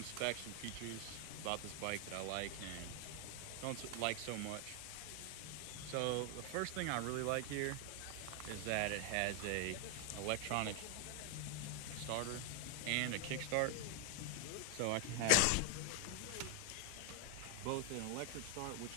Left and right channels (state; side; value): different; both; correlation 0.00